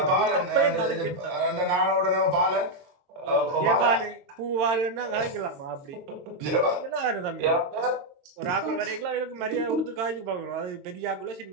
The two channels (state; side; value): late; left; 22 ms